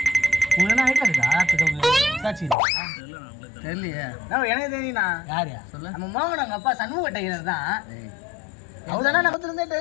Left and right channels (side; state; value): right; drops out; at 2.6 s